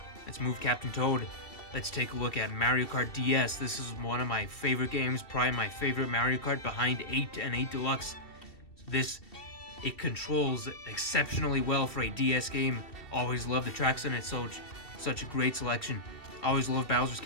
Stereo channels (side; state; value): right; late; 2.6 ms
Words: let's move Captain Toad. Let's take a look at Mario Kart DS. This is one of my favorite games, probably my favorite Mario Kart behind 8 and 8 Deluxe. It controls exceptionally well for a DS game. Always love the tracks in it, such a great selection. Always love Bowser's